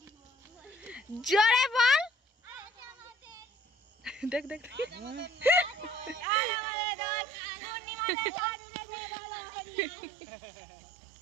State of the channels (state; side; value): drops out; left; at 6.2 s